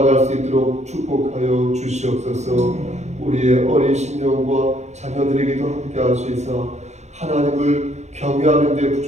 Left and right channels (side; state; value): left; late; 0.33 ms